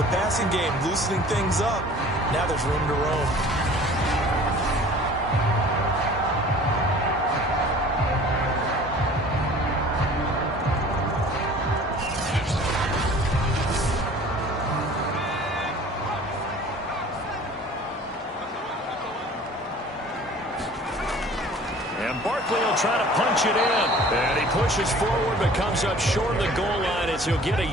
passing game loosening things up. Now there's room to roam. And Barkley will try to punch it in. And he pushes forward but comes up short of the goal line as he'll get a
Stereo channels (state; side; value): normal; both; correlation 0.47